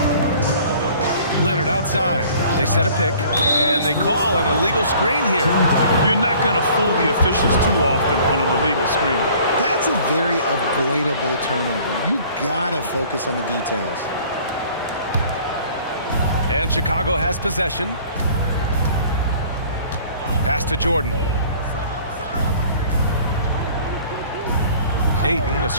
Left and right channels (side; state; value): both; inverted; correlation -0.52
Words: Leonard outside. They set a pick, and they call an illegal screen here. You're not going to fool the officials too often on an illegal screen. That's a very avoidable turnover. You gotta focus on the details. And Chicago has possession. Pass to Jordan. Ayton, a